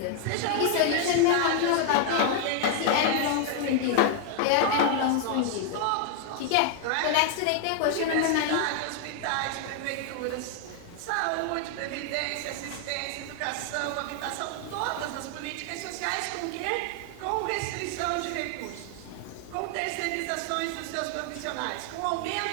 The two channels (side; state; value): both; different; correlation 0.00